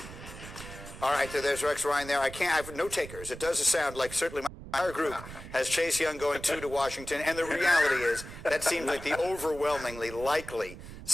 All right, there's Rex Ryan there. I have no takers. It does sound like certainly our group has Chase Young going to Washington, and the reality is that seems like the overwhelmingly likely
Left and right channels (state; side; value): noise; right; rumble, 13 dB below the sound